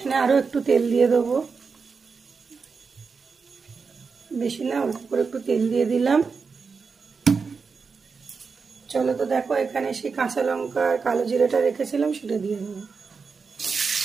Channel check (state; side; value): quieter; left; 5.1 dB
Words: আরও একটু তেল দিয়ে দেবো। বেশি না, অল্প করে একটু তেল দিয়ে দিলাম। চলো তো দেখো, এখানে সেই কাঁচা লঙ্কা আর কালো জিরাটা রেখেছিলাম, সেটা দিয়ে দেবো।